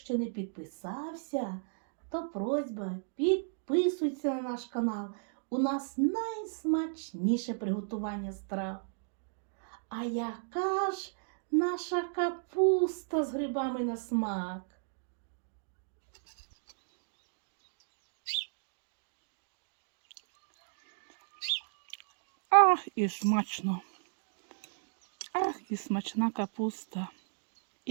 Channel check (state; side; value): silent; left; digital silence